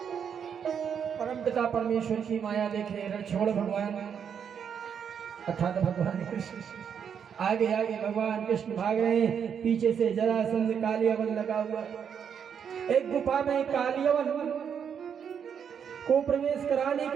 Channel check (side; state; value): left; quieter; 7.6 dB